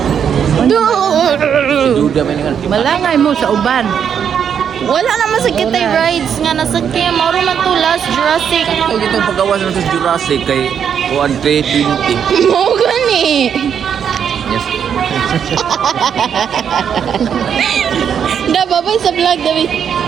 Duda man nga. Malangay mo sa uban. Wala naman sa kitay rides nga nasakyan. Mauro man to last Jurassic. Ay dito pagawas na sa Jurassic kay kuan 320. Mo gani. Yes. Da babay sa vlog David.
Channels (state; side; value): quieter; left; 8.0 dB